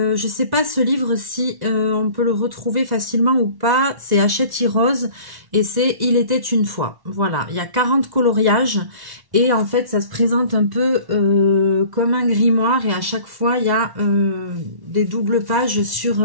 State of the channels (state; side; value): late; left; 1.1 ms